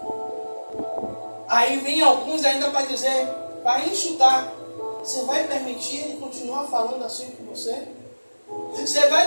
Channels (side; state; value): both; inverted; correlation -1.00